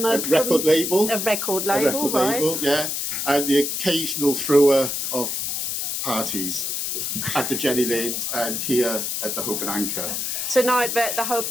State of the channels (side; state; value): left; noise; hiss, 2 dB below the sound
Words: record label. A record A label, record right? label, yeah. And the occasional thrower of parties at the Jenny Lind and here at the Hope and Anchor. Tonight we're at the Hope